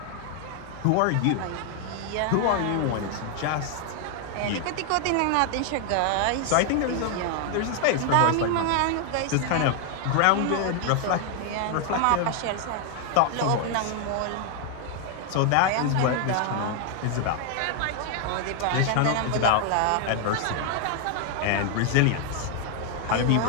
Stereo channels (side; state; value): both; different; correlation 0.00